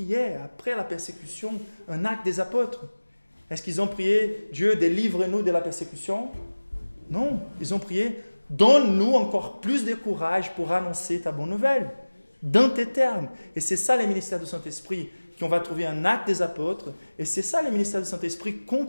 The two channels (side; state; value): both; inverted; correlation -1.00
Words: après la persécution? Un acte des apôtres. Est-ce qu'ils ont prié, Dieu, délivre-nous de la persécution? Non, ils ont prié, donne-nous encore plus de courage pour annoncer ta bonne nouvelle, dans tes termes. Et c'est ça les ministères du Saint-Esprit, qu'on va trouver un acte des apôtres. Et c'est ça les ministères du Saint-Esprit